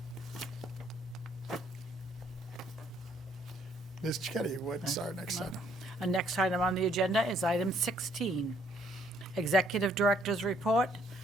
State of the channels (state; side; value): normal; both; correlation 0.66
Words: Ms. Chetty, what's our next item? Our next item on the agenda is item 16, Executive Director's Report,